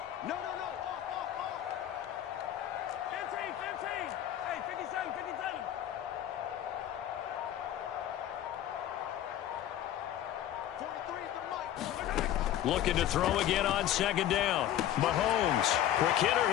No. 15. Hey, 57. Looking to throw again on 2nd down. Mahomes. Quick hitter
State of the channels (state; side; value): quieter; right; 11.7 dB